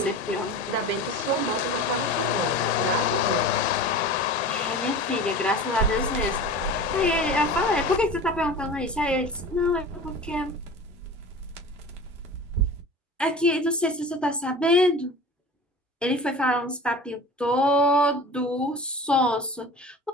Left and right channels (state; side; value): normal; both; correlation 0.36